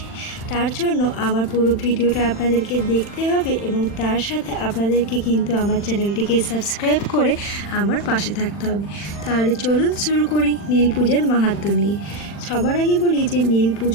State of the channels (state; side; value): late; right; 40 ms